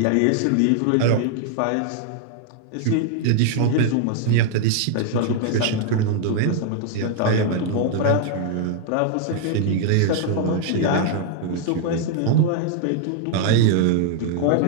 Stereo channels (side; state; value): both; different; correlation 0.00